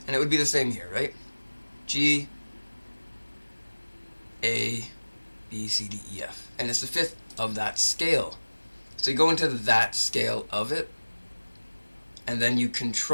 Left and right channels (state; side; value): inverted; both; correlation -1.00